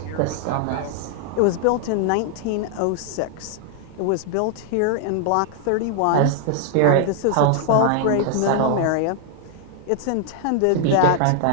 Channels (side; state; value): both; different; correlation 0.00